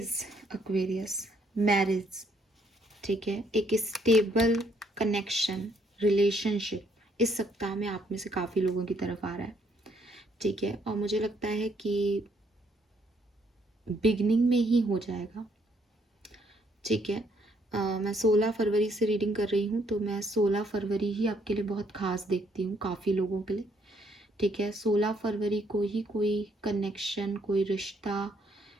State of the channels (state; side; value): normal; both; correlation 0.69